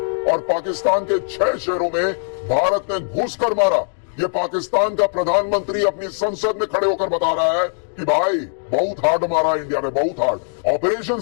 और पाकिस्तान के 6 शहरों में भारत ने घुसकर मारा, ये पाकिस्तान का प्रधानमंत्री अपनी संसद में खड़े होकर बता रहा है कि भाई बहुत हार्ड मारा इंडिया में, बहुत हार्ड। ऑपरेशन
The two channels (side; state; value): right; silent; digital silence